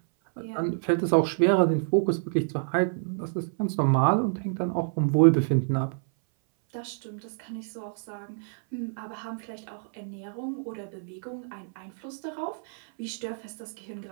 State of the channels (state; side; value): silent; left; 59 dB below the other